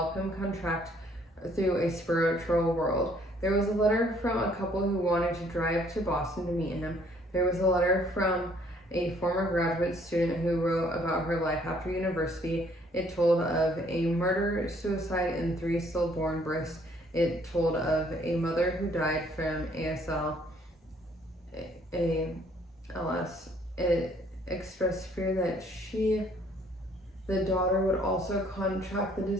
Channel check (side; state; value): both; normal; correlation 0.62